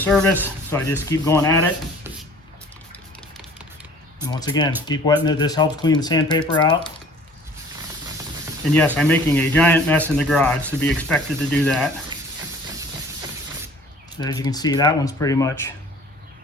So I just keep going at it. And once again, keep wetting it. This helps clean the sandpaper out. And yes, I'm making a giant mess in the garage, to be expected to do that. So as you can see, that one's pretty much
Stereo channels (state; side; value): normal; both; correlation 0.50